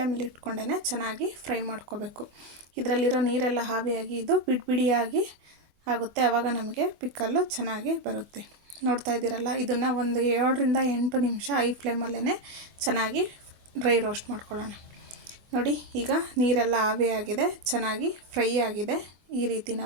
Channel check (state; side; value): late; left; 25 ms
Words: ಇಟ್ಕೊಂಡೇ ಚೆನ್ನಾಗಿ ಫ್ರೈ ಮಾಡ್ಕೋಬೇಕು. ಇದರಲ್ಲಿರೋ ನೀರೆಲ್ಲ ಆವಿಯಾಗಿ ಇದು ಬಿಡಿಯಾಗಿ ಆಗುತ್ತೆ, ಆವಾಗ ನಮಗೆ ಪಿಕ್ಕಲ್ಲು ಚೆನ್ನಾಗಿ ಬರುತ್ತೆ. ನೋಡ್ತಾ ಇದ್ದೀರಲ್ಲ, ಇದನ್ನು ಒಂದು 7ರಿಂದ 8 ನಿಮಿಷ ಐ ಫ್ಲೇಮಲ್ಲೇ ಚೆನ್ನಾಗಿ ಡ್ರೈ ರೋಸ್ಟ್ ಮಾಡ್ಕೊಳ್ಳೋಣ. ನೋಡಿ, ಈಗ ನೀರೆಲ್ಲ ಆವಿಯಾಗಿದೆ, ಚೆನ್ನಾಗಿ ಫ್ರೈ ಆಗಿದೆ. ಈ ರೀತಿ